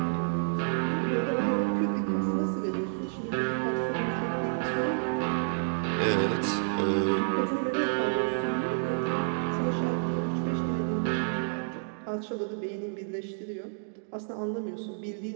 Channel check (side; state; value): left; silent; digital silence